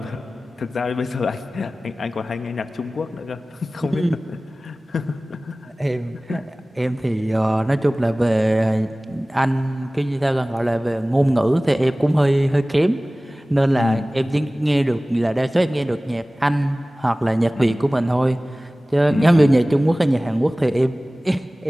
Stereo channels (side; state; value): both; normal; correlation 0.98